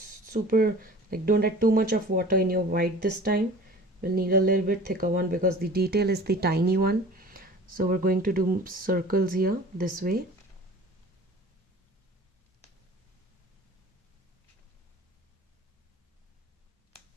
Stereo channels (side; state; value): both; normal; correlation 0.43